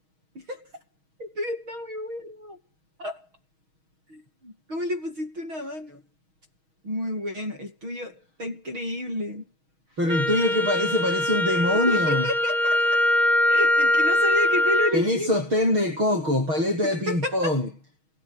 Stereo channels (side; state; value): left; late; 6.3 ms